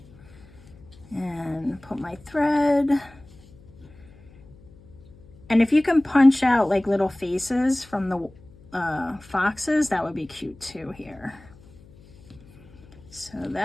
and put my thread. And if you can punch out like little faces from the foxes, that would be cute too here. So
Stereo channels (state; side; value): noise; left; hum, 24 dB below the sound